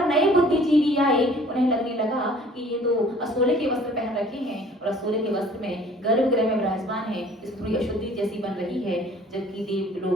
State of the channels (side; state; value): both; normal; correlation 0.53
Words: नए बुद्धिजीवी आए, उन्हें लगने लगा कि ये तो असोले के वस्त्र पहन रखे हैं और असोले के वस्त्र में गर्भगृह में विराजमान है, इस थोड़ी अशुद्धि जैसी बन रही है, जबकि देव